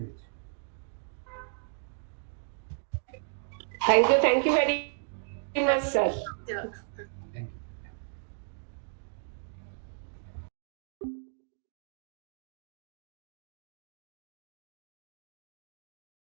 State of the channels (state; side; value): silent; left; digital silence